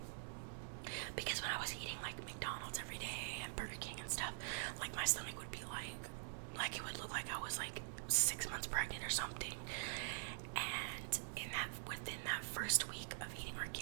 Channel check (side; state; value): left; silent; digital silence